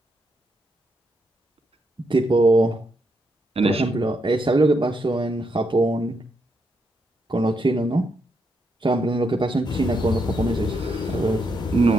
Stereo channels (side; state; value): both; normal; correlation 0.80